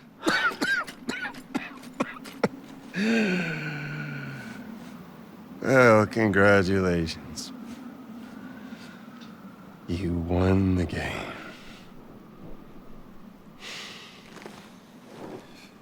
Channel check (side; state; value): both; identical; correlation 1.00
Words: Well, congratulations. You won the game.